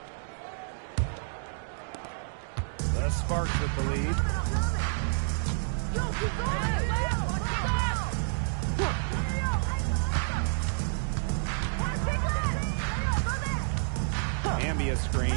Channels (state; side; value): silent; left; digital silence